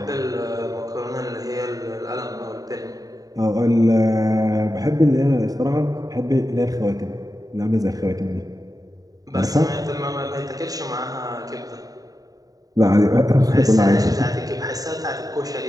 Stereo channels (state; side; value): late; left; 0.18 ms